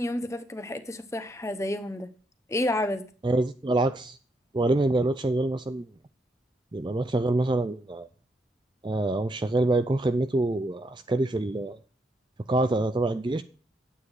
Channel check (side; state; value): both; normal; correlation 0.77